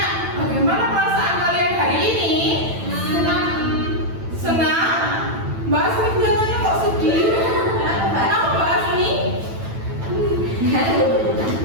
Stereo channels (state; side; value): late; left; 9.1 ms